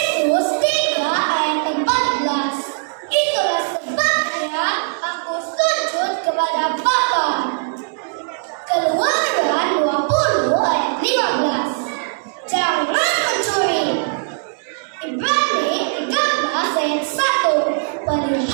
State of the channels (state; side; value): silent; left; digital silence